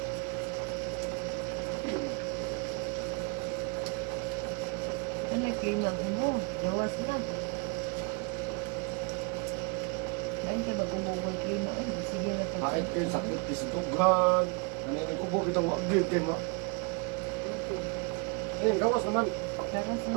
Ano yung klima mo? Gawas na. Lain ka mag-umubo yung klima. Ay, sige na pa. Kahit yun, sakit di sa tughan. Ano yung ubo kitang wagig kayo ma. Ayun, gawas naman. Karas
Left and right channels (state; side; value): quieter; left; 32.2 dB